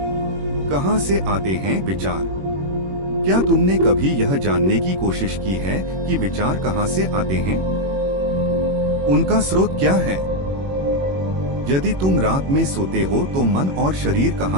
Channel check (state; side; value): late; left; 21 ms